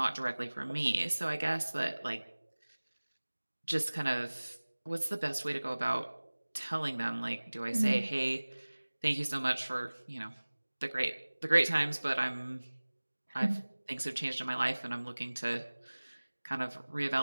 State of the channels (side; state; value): both; inverted; correlation -1.00